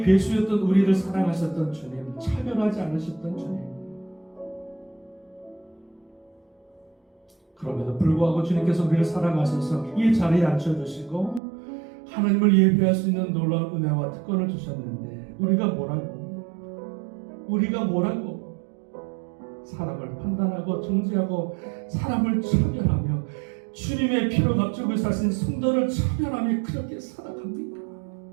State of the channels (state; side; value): drops out; left; at 11.4 s